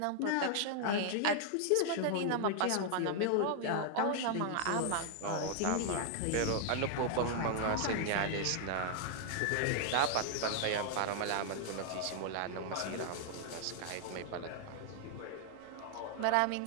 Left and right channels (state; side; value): different; both; correlation 0.00